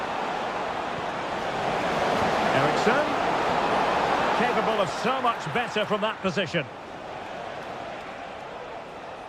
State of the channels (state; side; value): identical; both; correlation 1.00